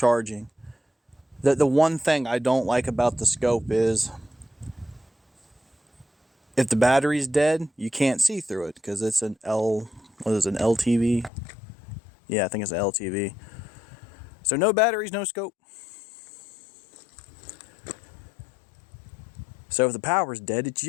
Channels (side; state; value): right; drops out; at 11.3 s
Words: The one thing I don't like about the scope is If the battery's dead, you can't see through it because it's an LTV? Yeah, I think it's an LTV. So no batteries, no scope. So if the power's dead, it's